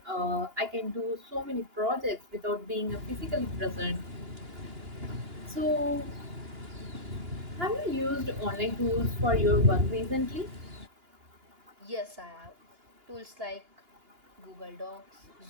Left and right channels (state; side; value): late; left; 2.9 ms